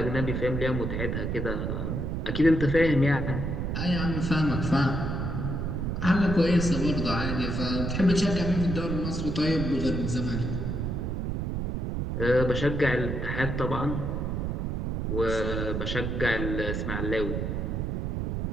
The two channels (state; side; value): noise; right; rumble, 1 dB below the sound